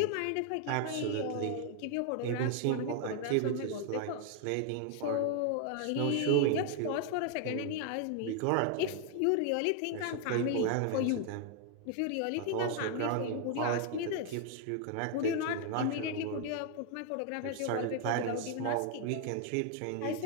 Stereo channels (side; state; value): both; different; correlation 0.00